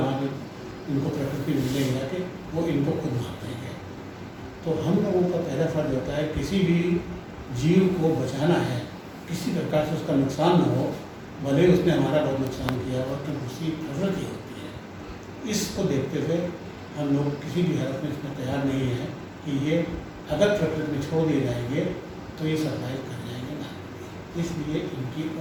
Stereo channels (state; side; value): identical; both; correlation 1.00